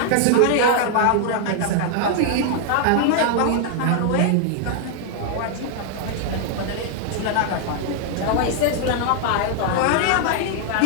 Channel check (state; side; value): different; both; correlation 0.00